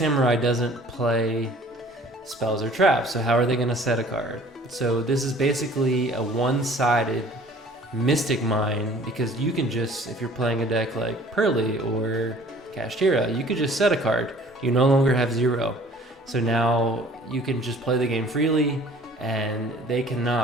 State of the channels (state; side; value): normal; both; correlation 0.52